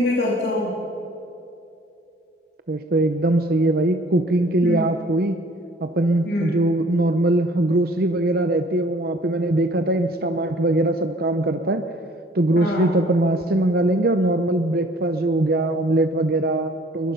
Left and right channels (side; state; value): both; normal; correlation 0.55